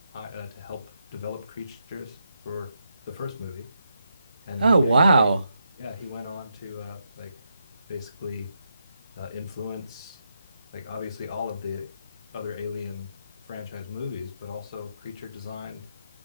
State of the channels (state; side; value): inverted; both; correlation -0.82